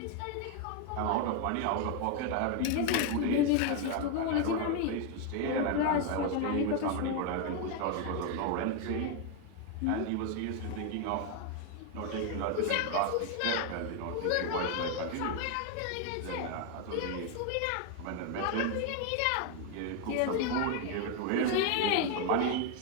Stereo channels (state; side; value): different; both; correlation 0.01